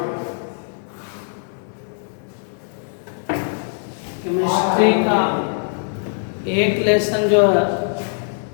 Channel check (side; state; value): right; silent; digital silence